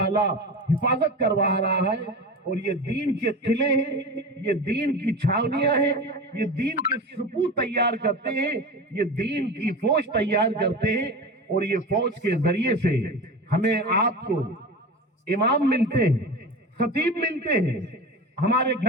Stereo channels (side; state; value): both; normal; correlation 0.28